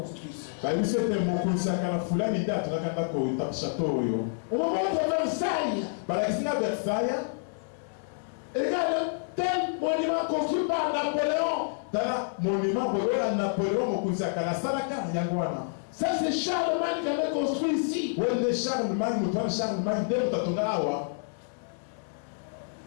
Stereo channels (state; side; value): silent; right; 59 dB below the other